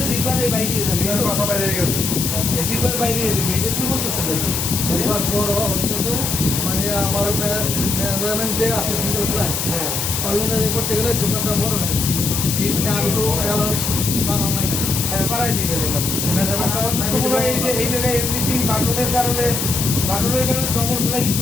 জিপার এই বাইরে যাবে, জিপার বাইরে যাবে, এটা তুই বলতেছেন নাকি? জিপার বড় হচ্ছে মানে আমার মেজারমেন্ট যে আছে সিঙ্গেল প্লাই, হ্যাঁ, ওই অনুযায়ী করতে গেলে জিপারটা বড় হয়। এই আলু ব্যালেন্স বানানো লাগে। হ্যাঁ, বাড়াই দিবেন এটা। মেজারমেন্টটা আমার তো মনে হয় এই যে এই জায়গায় এমনিতেই বাটনের কারণে ডবল ফ্লাই কিন্তু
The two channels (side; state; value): left; noise; hiss, 1 dB below the sound